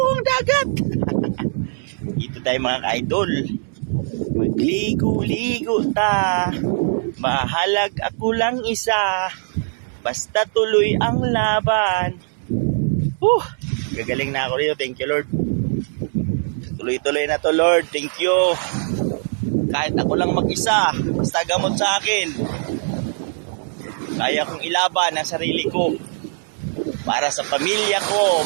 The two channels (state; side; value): silent; left; 65 dB below the other